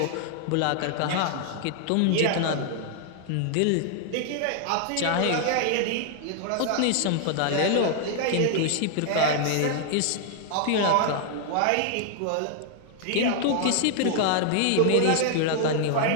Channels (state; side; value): different; both; correlation 0.00